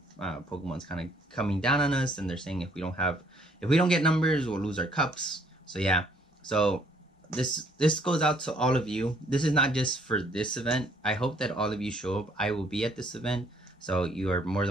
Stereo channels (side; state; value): both; normal; correlation 0.64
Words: Pokemon's kind of coming down on us, and they're saying if we don't get numbers, we'll lose our cups. So yeah, so this goes out to all of you. This is not just for this event. I hope that all of you show up. I will be at this event, so you are more